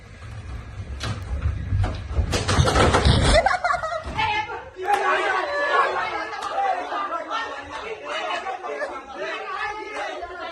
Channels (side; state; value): both; identical; correlation 1.00